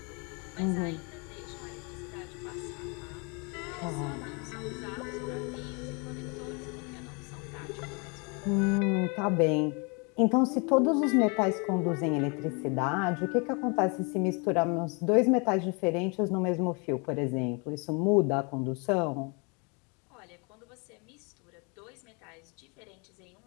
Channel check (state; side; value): quieter; right; 32.9 dB